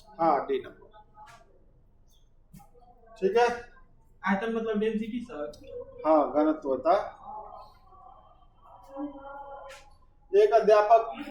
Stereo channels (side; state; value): both; identical; correlation 1.00